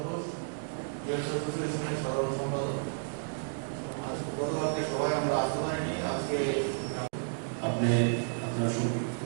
ঘোষ, ইউএস অ্যাসোসিয়েশনের সাধারণ সম্পাদক। আজ গতকালকে সবাই আমরা আসতে পারিনি, আজকে আপনি আপনার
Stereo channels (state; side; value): silent; left; digital silence